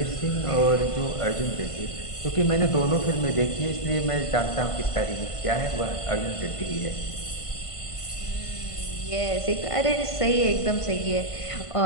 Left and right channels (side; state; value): right; late; 1.5 ms